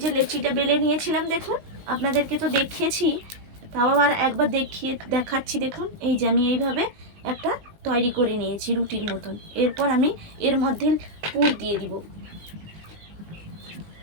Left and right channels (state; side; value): late; left; 19 ms